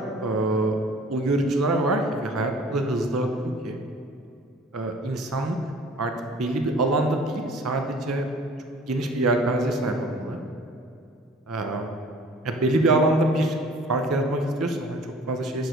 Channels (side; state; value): both; normal; correlation 0.49